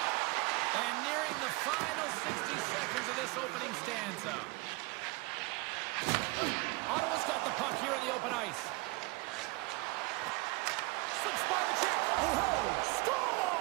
And nearing the final 60 seconds of this opening stanza. Ottawa's got the puck here in the open ice. Slips by the check. Oh,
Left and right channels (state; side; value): quieter; left; 25.0 dB